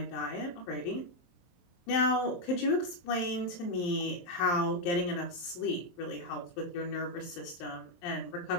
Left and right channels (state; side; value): late; right; 23 ms